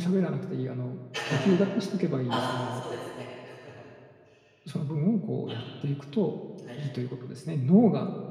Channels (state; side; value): identical; both; correlation 1.00